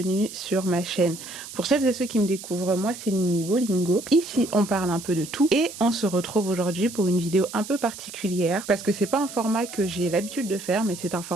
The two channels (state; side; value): noise; right; hiss, 13 dB below the sound